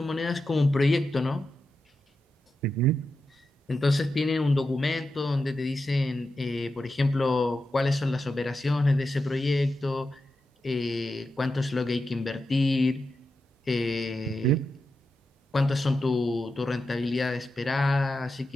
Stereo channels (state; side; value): normal; both; correlation 0.89